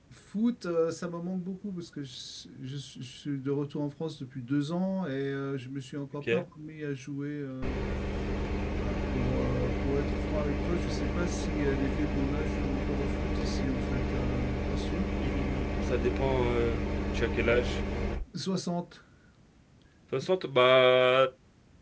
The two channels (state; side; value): identical; both; correlation 1.00